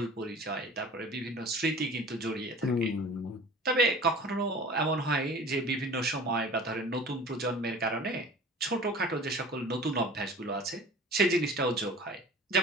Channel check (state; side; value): normal; both; correlation 0.42